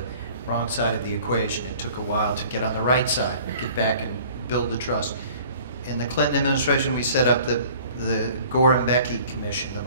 the equation. It took a while to get on the right side, get back and build the trust. In the Clinton administration, we set up the Gore and Becky Commission,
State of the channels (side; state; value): both; inverted; correlation -0.50